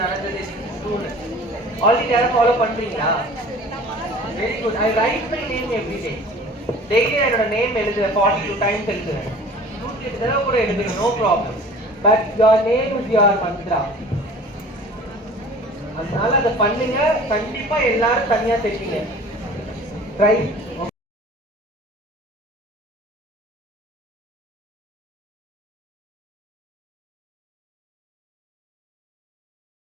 நடந்தது ஆல்ரெடி யாரும் ஃபாலோ பண்றீங்களா? Very good. I write my name every day. Daily என்னோட நேம் எழுதுவேன், 42 டைம்ஸ் எழுதுவேன். 108 தடவை கூட எழுதுவேன், no problem. But your name is your mantra. அதனால அதை பண்ணுங்க. கண்டிப்பா எல்லாரும் தனியா தெரியுங்க. ட்ரை.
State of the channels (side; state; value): both; normal; correlation 0.45